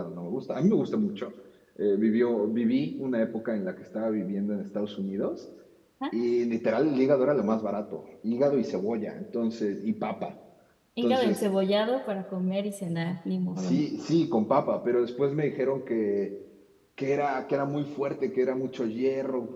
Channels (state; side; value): identical; both; correlation 1.00